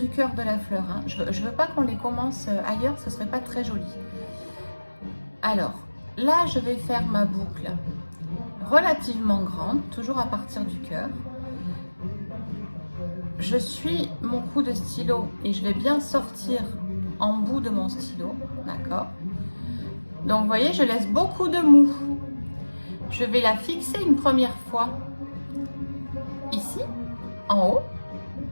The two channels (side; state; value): both; inverted; correlation -1.00